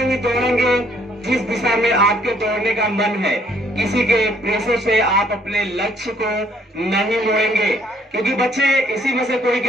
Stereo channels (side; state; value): both; normal; correlation 0.64